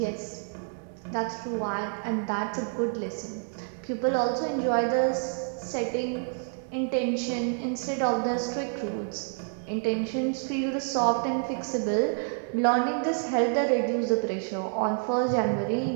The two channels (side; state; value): left; silent; 59 dB below the other